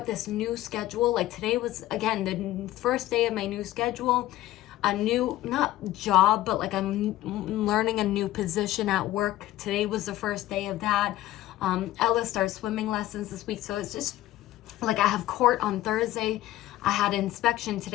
this new schedule. Like today was, again, the first day of my new schedule. A new, not job, but like I'm learning a new position at work. Today was the first day of that. Ella starts swimming lessons this week, so it's just like I have court on Thursday. I had inspection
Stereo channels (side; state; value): right; quieter; 15.1 dB